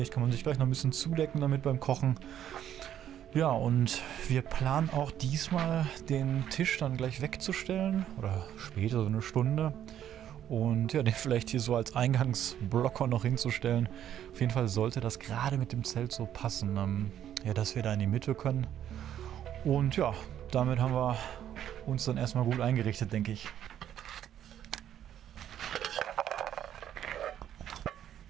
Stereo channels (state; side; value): quieter; left; 10.6 dB